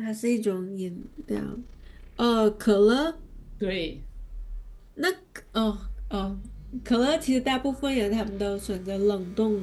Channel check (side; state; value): both; identical; correlation 1.00